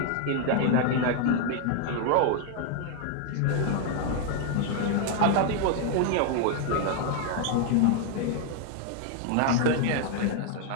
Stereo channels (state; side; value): different; both; correlation 0.00